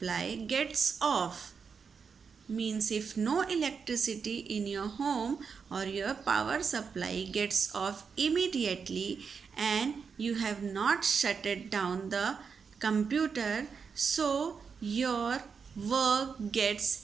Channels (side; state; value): left; quieter; 5.9 dB